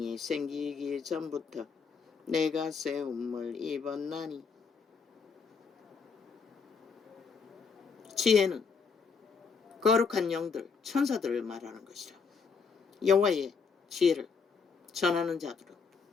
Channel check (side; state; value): right; quieter; 5.4 dB